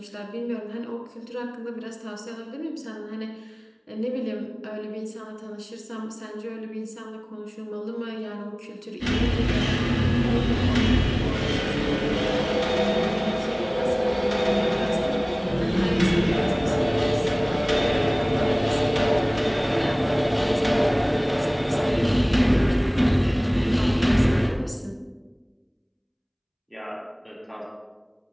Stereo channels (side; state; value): both; identical; correlation 1.00